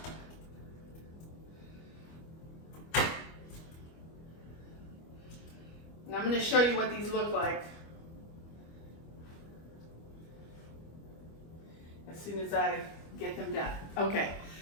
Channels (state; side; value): late; right; 25 ms